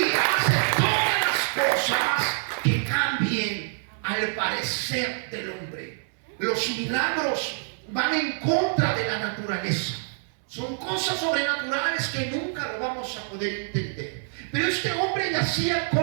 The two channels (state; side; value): silent; left; 61 dB below the other